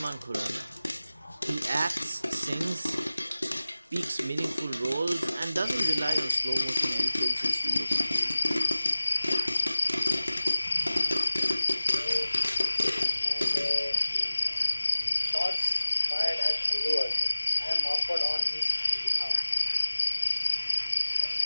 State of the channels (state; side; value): inverted; both; correlation -0.97